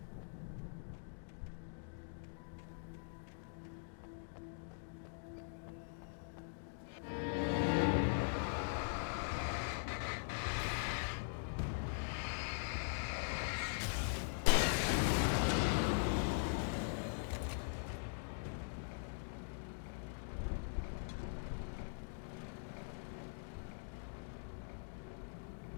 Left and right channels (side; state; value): right; silent; digital silence